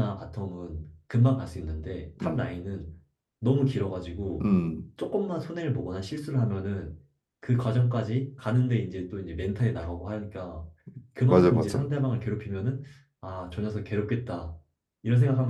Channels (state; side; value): identical; both; correlation 1.00